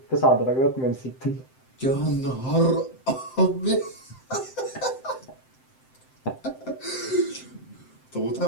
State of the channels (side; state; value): right; late; 7.7 ms